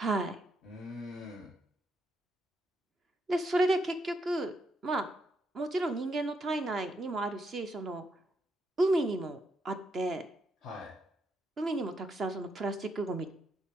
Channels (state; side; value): normal; both; correlation 0.79